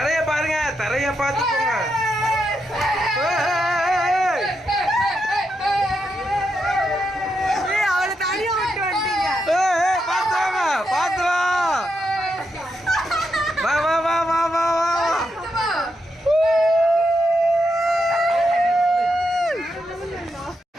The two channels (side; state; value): both; normal; correlation 0.83